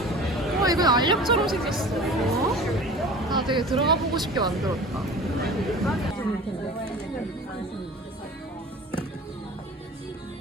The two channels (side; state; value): both; normal; correlation 0.40